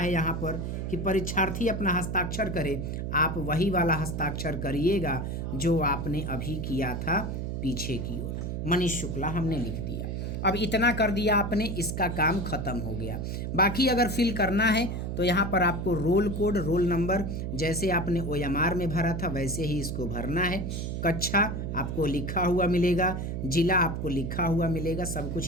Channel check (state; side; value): noise; right; hum, 3 dB below the sound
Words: यहाँ पर कि परीक्षार्थी अपना हस्ताक्षर करे। आप वही वाला हस्ताक्षर करिएगा जो आपने अभी किया था पीछे की ओर। मनीष शुक्ला हमने लिख दिया। अब इतना कर दिया आपने, इसका काम खत्म हो गया। बाकी अगर फिल करना है तो यहाँ पर आपको रोल कोड, रोल नंबर जैसे आपने ओएमआर में भरा था वैसे ही इसको भरना है। कक्षा आपको लिखा हुआ मिलेगा, जिला आपको लिखा हुआ मिलेगा, सब